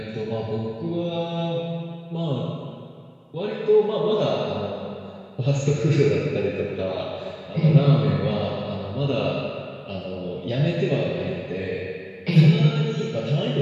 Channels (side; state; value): both; identical; correlation 1.00